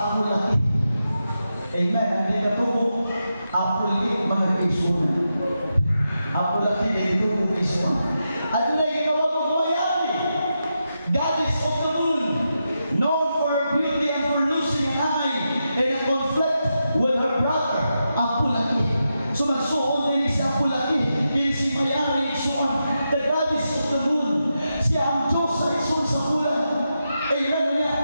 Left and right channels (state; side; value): inverted; both; correlation -0.87